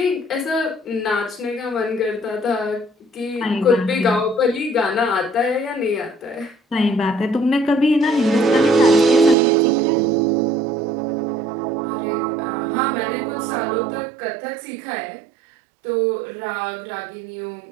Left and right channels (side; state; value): left; drops out; at 9.3 s